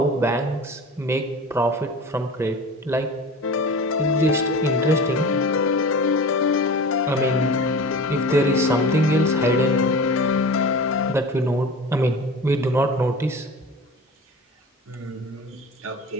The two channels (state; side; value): normal; both; correlation 0.35